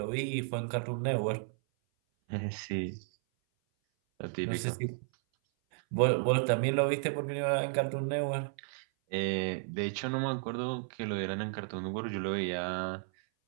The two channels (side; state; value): left; silent; 56 dB below the other